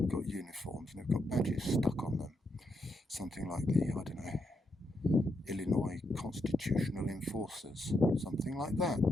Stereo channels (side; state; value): both; normal; correlation 0.81